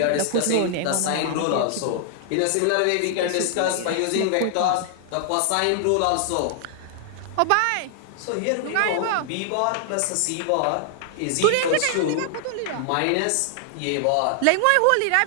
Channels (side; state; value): both; different; correlation 0.00